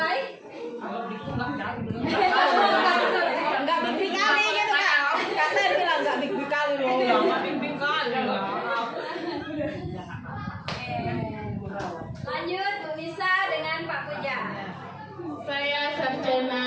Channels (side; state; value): both; identical; correlation 1.00